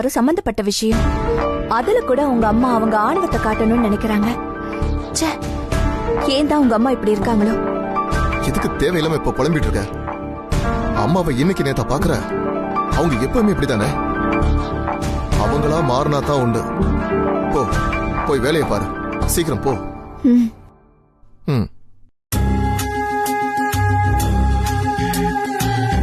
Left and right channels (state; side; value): identical; both; correlation 1.00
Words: சம்பந்தப்பட்ட விஷயம். அதுல கூட உங்க அம்மா அவங்க ஆணவத்தை காட்டணும்னு நினைக்கிறாங்க. ச்சே, ஏன் தான் உங்க அம்மா இப்படி இருக்காங்களோ? எதுக்கு தேவையில்லாம இப்ப புலம்பிட்டு இருக்க? அம்மாவை இன்னைக்கு நேத்தா பாக்குற? அவங்க எப்பவுமே இப்படித்தானே. அவங்களா மாறினா தான் உண்டு. போ, போய் வேலையை பாரு. சீக்கிரம் போ. ம்.